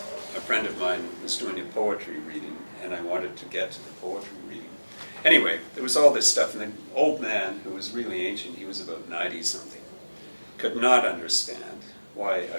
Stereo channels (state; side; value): inverted; both; correlation -1.00